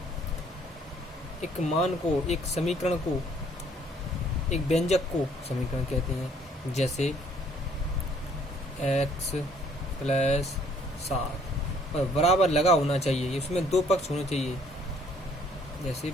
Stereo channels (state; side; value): normal; both; correlation 0.62